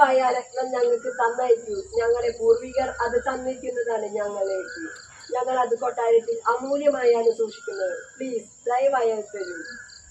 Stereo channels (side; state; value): both; identical; correlation 1.00